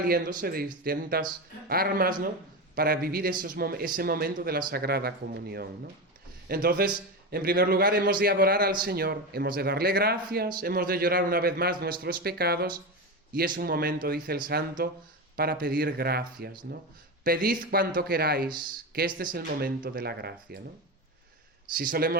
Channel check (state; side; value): normal; both; correlation 0.18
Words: de distintas armas, ¿no?, para vivir ese momento de la Sagrada Comunión, ¿no? Entonces, en primer lugar, hemos de adorar al Señor, hemos de darle gracias, hemos de llorar una vez más nuestros pecados, y es un momento, dice el santo, para pedir gracias, ¿no? Pedid cuanto queráis, que este es el momento de la gracia, ¿no? Si